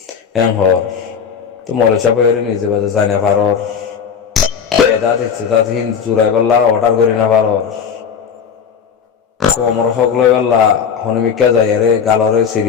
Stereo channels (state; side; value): quieter; right; 7.0 dB